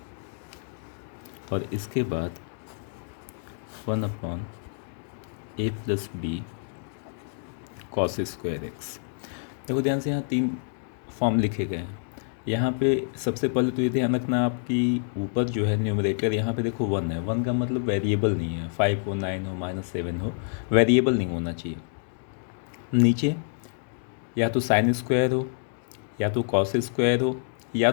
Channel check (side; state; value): right; silent; digital silence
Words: और इसके बाद 1/a plus b cos square x. देखो ध्यान से, यहाँ 3 फॉर्म लिखे गए हैं। यहाँ पे सबसे पहले तो ये ध्यान रखना, आपकी ऊपर जो है न्यूमरेटर, यहाँ पे देखो 1 है। 1 का मतलब वेरिएबल नहीं है, 5 हो, 9 हो, -7 हो, वेरिएबल नहीं होना चाहिए। नीचे या तो साइन स्क्वायर हो, या तो कॉस स्क्वायर हो, या